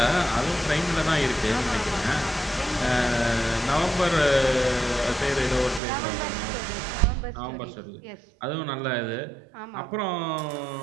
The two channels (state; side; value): drops out; left; at 5.8 s